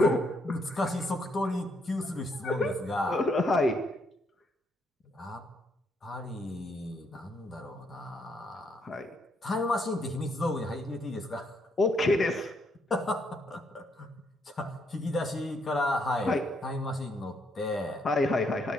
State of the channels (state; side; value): normal; both; correlation 0.74